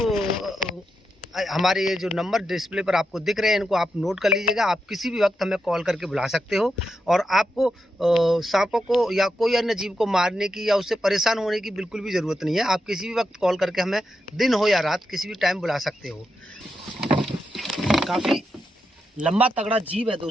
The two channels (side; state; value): both; normal; correlation 0.86